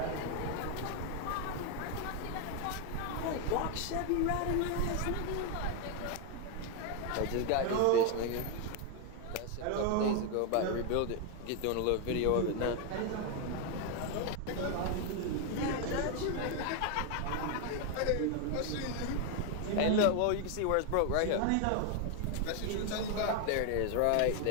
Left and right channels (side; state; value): both; different; correlation 0.01